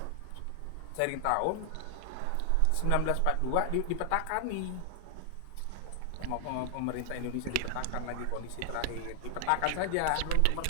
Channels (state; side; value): different; both; correlation 0.00